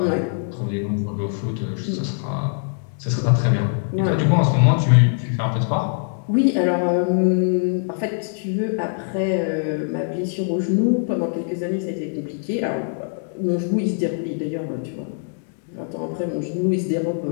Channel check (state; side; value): silent; right; 64 dB below the other